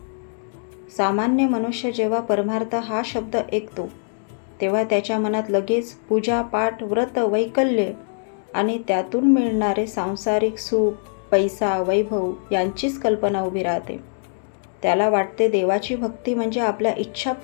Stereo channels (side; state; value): right; silent; digital silence